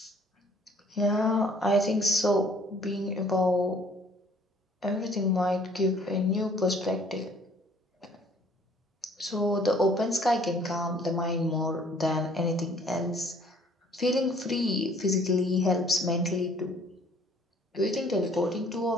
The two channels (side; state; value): both; normal; correlation 0.57